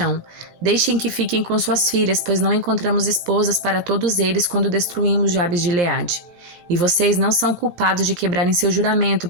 Deixem que fiquem com suas filhas, pois não encontramos esposas para todos eles quando destruímos Jabes de Gileade. E vocês não são culpados de quebrarem seu juramento,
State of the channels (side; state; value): left; late; 18 ms